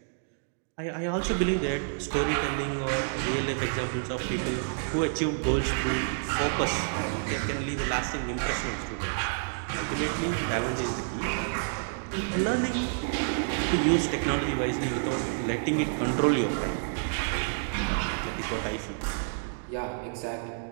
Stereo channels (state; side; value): silent; left; digital silence